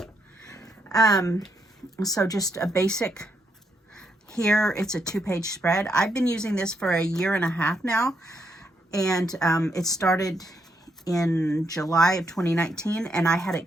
So just a basic, here it's a 2-page spread. I've been using this for 1.5 years now, and it started in July of 2019, and I had it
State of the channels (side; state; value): both; normal; correlation 0.78